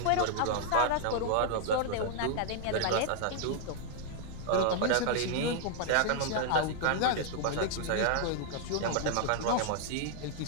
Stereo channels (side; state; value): both; different; correlation 0.00